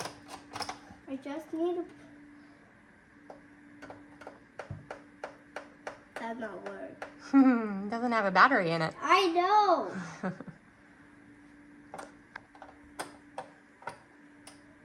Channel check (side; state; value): both; identical; correlation 1.00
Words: I just need to. That not work. Doesn't have a battery in it. I know.